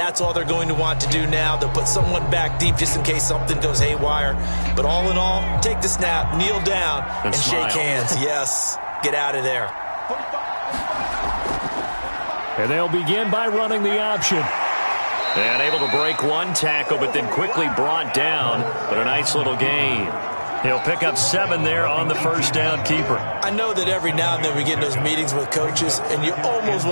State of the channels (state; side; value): inverted; both; correlation -1.00